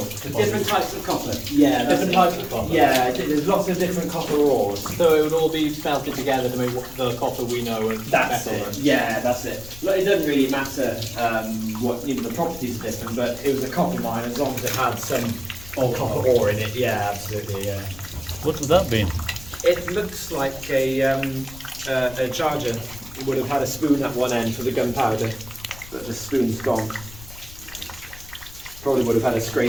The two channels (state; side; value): noise; left; rumble, 17 dB below the sound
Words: Different types of copper. Yeah, Different types of copper. Yeah, there's lots of different copper ores. So it would all be smelted together to make the copper we know and That's metal. it. Yeah, that's it. Look, it doesn't really matter what the properties are different, but it was a copper mine as long as it had some copper ore in it. Yeah, absolutely. Yeah. What would that be? It looks like a charger. It would have had a spoon at one end for the gunpowder, but the spoon's gone. Probably would have had a